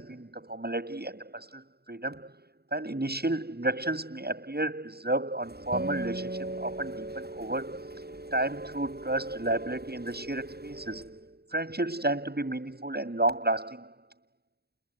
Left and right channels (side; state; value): left; late; 0.46 ms